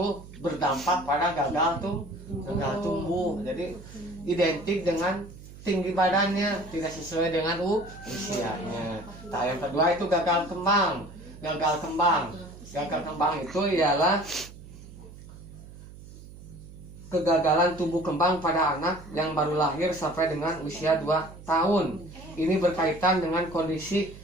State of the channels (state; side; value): noise; right; hum, 17 dB below the sound